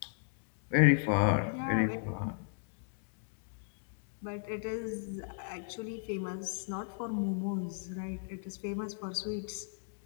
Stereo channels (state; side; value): silent; right; digital silence